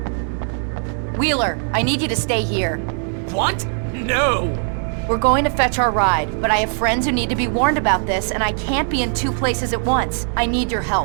Wheeler, I need you to stay here. What? No! We're going to fetch our ride, but I have friends who need to be warned about this, and I can't be in 2 places at once. I need your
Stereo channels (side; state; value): left; silent; 55 dB below the other